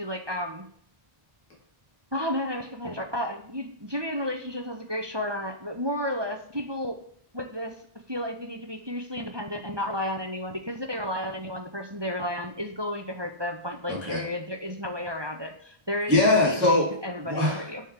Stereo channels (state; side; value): late; left; 1.2 ms